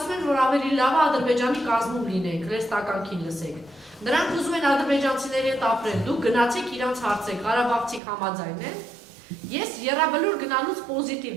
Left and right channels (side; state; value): left; drops out; at 8.0 s